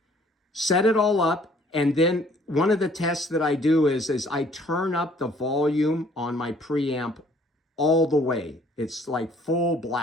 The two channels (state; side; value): normal; both; correlation 0.59